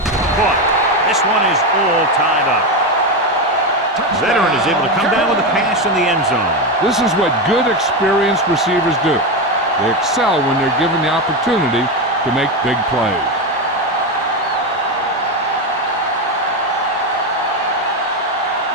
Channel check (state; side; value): normal; both; correlation 0.13